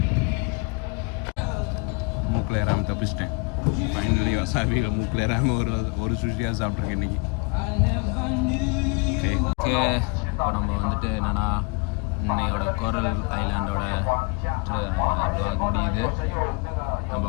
மூக்கில் ஏறாமல் தப்பிச்சிட்டேன். ஃபைனலி வசாபியில் மூக்கில் ஏறாமல் ஒரு சுஷியாக சாப்பிட்ருக்கேன் இன்றைக்கி. ஓகே, இப்போ நம்ம வந்துட்டு என்னென்னா இன்னையோட கோரல் ஐலாண்டோட விளாக் முடியுது. நம்ம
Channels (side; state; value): right; quieter; 29.9 dB